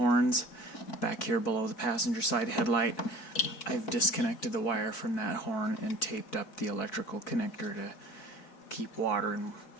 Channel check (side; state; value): right; late; 4.4 ms